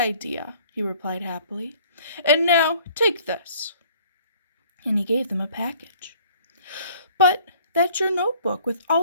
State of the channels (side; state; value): both; inverted; correlation -0.55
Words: he replied happily. "And now, take this." And he gave them a package. "But that's your notebook with